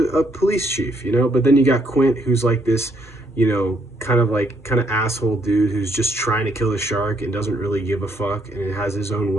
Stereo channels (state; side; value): normal; both; correlation 0.71